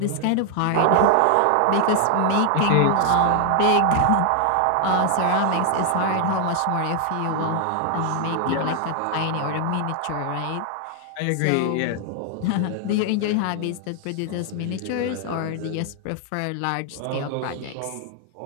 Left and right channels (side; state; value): both; different; correlation 0.00